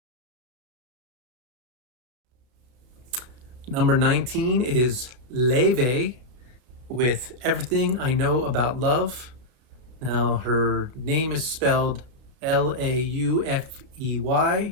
Number 19 is Laufey with Everything I Know About Love. Now, her name is spelled Laufey,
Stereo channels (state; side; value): late; left; 33 ms